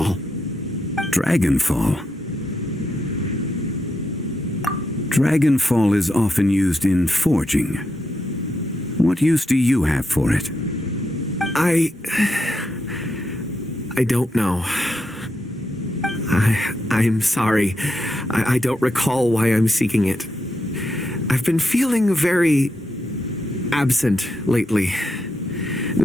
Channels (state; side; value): normal; both; correlation 0.83